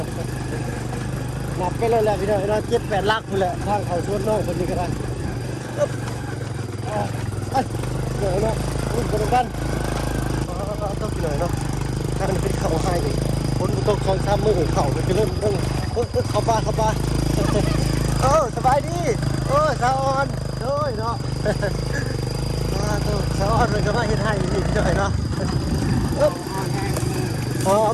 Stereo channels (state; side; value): identical; both; correlation 1.00